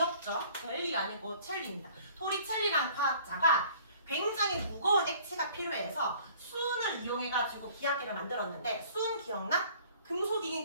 젤리가 아니고 첼리입니다. 토리첼리라는 과학자가 굉장히 무거운 액체가 필요해서 수은을 이용해가지고 기압계를 만들었는데 수은 기억나? 금속이긴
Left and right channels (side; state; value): both; inverted; correlation -0.53